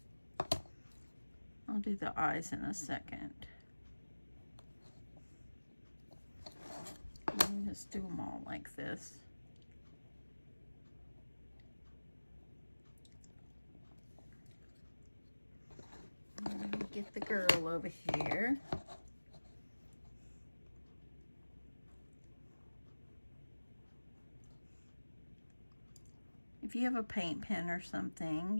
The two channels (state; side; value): inverted; both; correlation -1.00